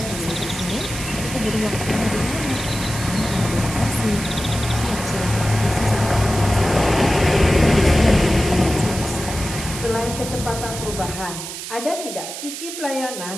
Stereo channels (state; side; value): noise; right; hiss, 8 dB below the sound